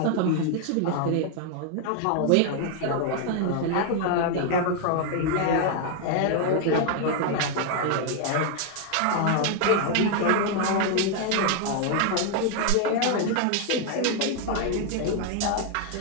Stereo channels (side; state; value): both; different; correlation 0.00